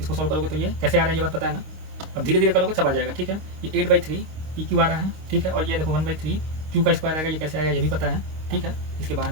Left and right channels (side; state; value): left; late; 25 ms